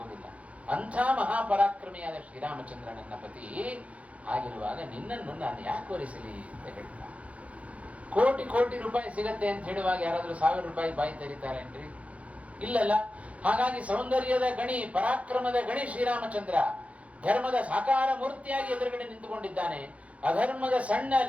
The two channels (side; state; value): left; late; 0.065 ms